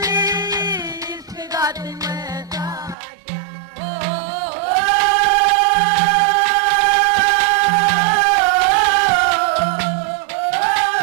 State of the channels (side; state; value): left; drops out; at 3.0 s